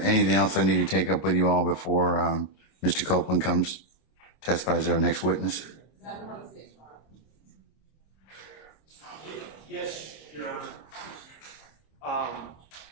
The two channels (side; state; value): right; late; 26 ms